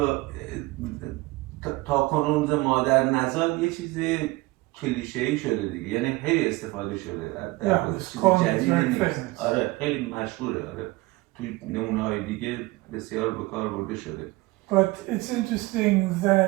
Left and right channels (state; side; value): quieter; left; 21.5 dB